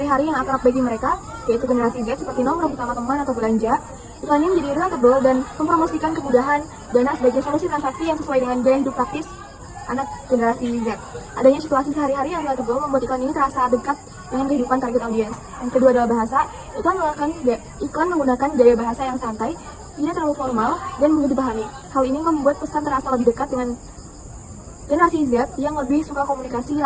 yang akrab bagi mereka, yaitu generasi Z seperti nongkrong bersama teman atau belanja. Iklan ini menjadi relatable dan mempromosikan kemudahan Dana sebagai solusi transaksi yang sesuai dengan gaya hidup praktis anak generasi Z. Adanya situasi sehari-hari yang relatable membuat iklan ini terasa dekat dengan kehidupan target audience. Yang kedua adalah bahasa. Iklan menggunakan gaya bahasa yang santai, tidak terlalu formal, dan mudah dipahami. Hal ini membuat pesan terasa lebih dekat dengan generasi Z yang lebih suka komunikasi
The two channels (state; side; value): identical; both; correlation 1.00